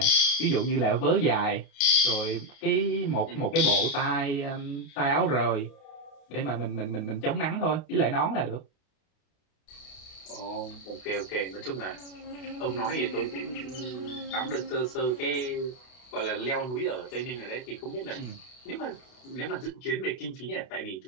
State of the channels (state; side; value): late; right; 32 ms